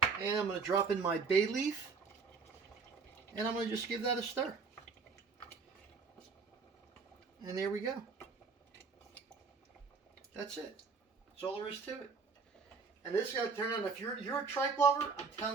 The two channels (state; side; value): quieter; left; 4.9 dB